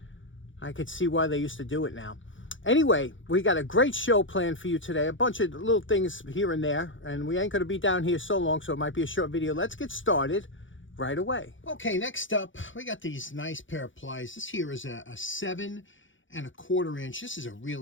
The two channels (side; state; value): right; late; 0.56 ms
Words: I could see why they used to do it now. Anyway, we got a great show planned for you today. A bunch of little things here and there. And we ain't going to be down here so long, so it might be a short video. Let's get started right away. Okay, next up, we got these nice pair of pliers. This here is a 7 1/4 inch. This is a